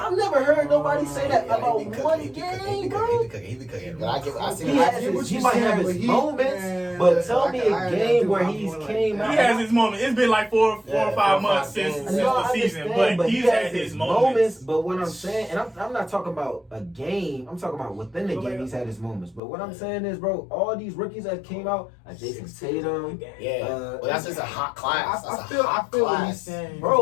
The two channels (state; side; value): drops out; right; at 19.4 s